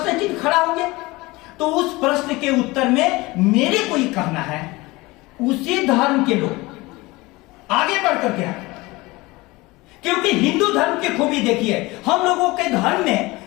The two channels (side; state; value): right; quieter; 21.8 dB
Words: चिन्ह खड़ा होंगे। तो उस प्रश्न के उत्तर में मेरे को ये कहना है, उसी धर्म के लोग आगे बढ़ करके आए, क्योंकि हिंदू धर्म की खूबी देखिए, हम लोगों के धर्म में